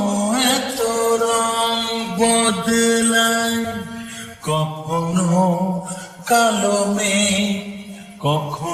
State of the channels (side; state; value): both; identical; correlation 1.00